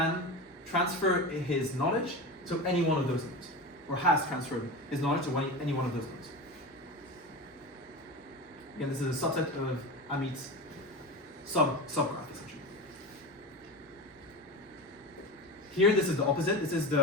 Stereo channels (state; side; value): normal; both; correlation 0.26